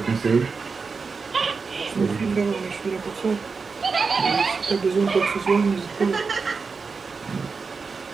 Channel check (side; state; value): left; quieter; 4.8 dB